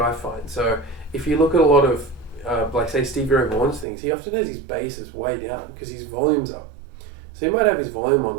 I find. So if you look at a lot of, like say Stevie Ray Vaughan's things, he often has his basses way down because his volume's up. So he might have his volume on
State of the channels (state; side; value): drops out; left; at 3.9 s